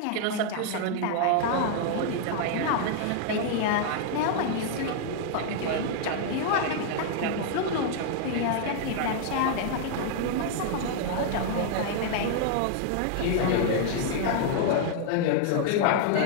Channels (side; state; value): both; different; correlation 0.00